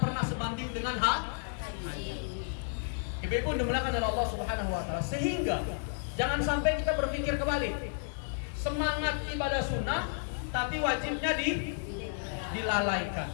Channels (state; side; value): silent; right; 56 dB below the other